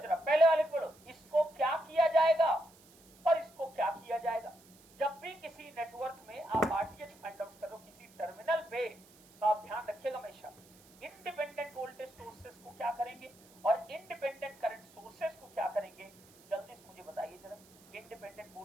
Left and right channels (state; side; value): noise; right; hiss, 26 dB below the sound